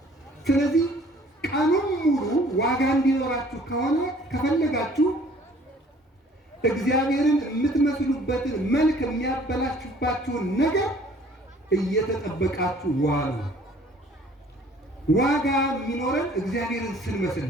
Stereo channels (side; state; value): both; normal; correlation 0.55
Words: ስለዚህ ቀኑን ሙሉ ዋጋ እንዲኖራችሁ ከሆነ ከፈለጋችሁ እግዚአብሔርን የምትመስሉበትን መልክ የሚያበላሽባችሁን ነገር እየተጠበቃችሁ ዋሉ። ዋጋ የሚኖረን እግዚአብሔርን ስንመስል